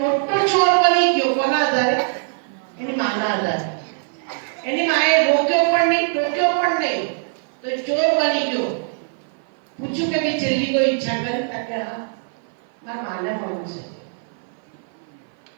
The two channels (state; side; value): silent; left; 55 dB below the other